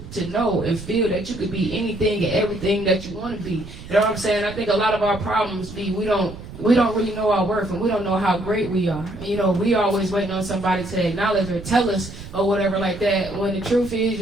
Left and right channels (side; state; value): right; noise; rumble, 14 dB below the sound